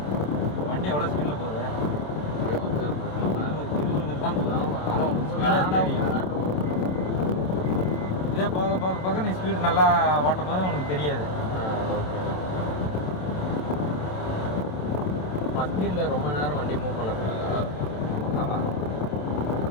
வண்டி எவ்வளோ ஸ்பீடில் போகுது? 20 தான் போகுது. ஆனால் ஸ்பீடாக தெரியும். இதே போக போக போக நீ ஸ்பீடு நல்லா ஓட்டும் போது உனக்கு தெரியாது. பஸ்டில் ரொம்ப நேரம் வண்டி மூவ் பண்ணக்கூடாது. ஆமாம்,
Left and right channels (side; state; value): right; late; 27 ms